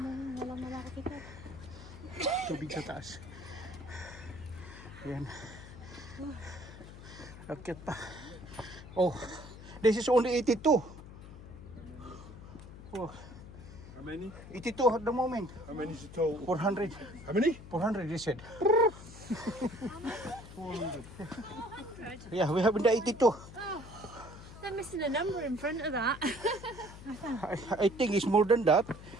Tubig sa taas. Ayan. Akit pa. Oh, this is only 82. Oh, How many? 82 at the moment. How many is the total? 400. How many? 400 they said. Yeah, we have the 82. They're missing a number in front of that. I think it's more than that.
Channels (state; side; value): noise; left; hum, 15 dB below the sound